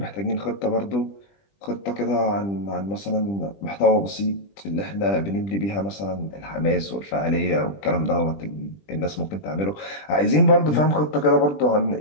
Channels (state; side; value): late; right; 20 ms